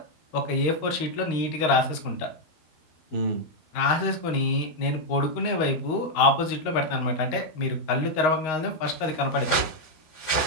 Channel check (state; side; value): late; right; 13 ms